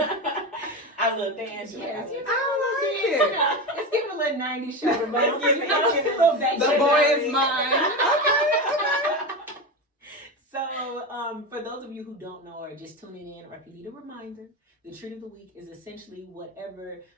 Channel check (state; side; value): normal; both; correlation 0.20